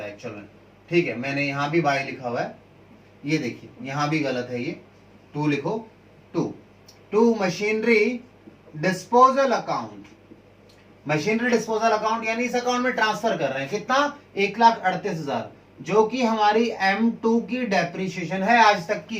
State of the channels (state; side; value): identical; both; correlation 1.00